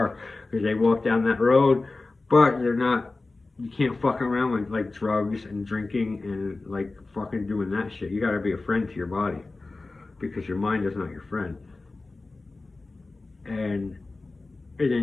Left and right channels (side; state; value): right; quieter; 3.4 dB